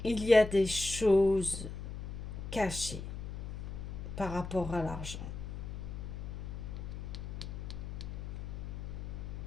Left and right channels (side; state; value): left; noise; hum, 7 dB below the sound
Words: Il y a des choses cachées par rapport à l'argent.